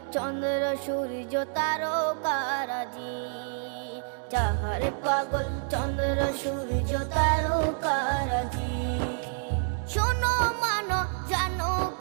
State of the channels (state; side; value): silent; left; digital silence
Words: চন্দ্র সূর্য তারকারাজি, যাহার পাগল চন্দ্র সূর্য তারকারাজি। শোনো মানো জানো